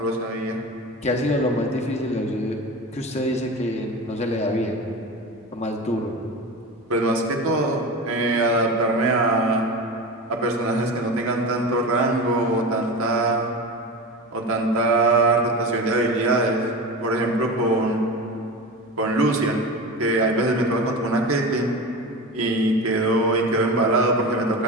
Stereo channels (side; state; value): both; normal; correlation 0.27